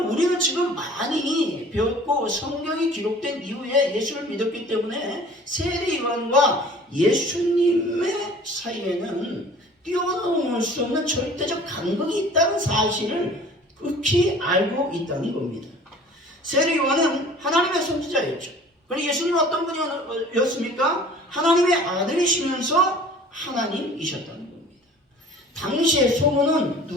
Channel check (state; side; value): normal; both; correlation 0.47